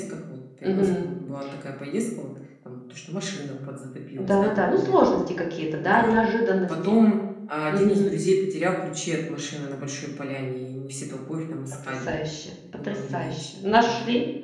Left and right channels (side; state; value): both; identical; correlation 1.00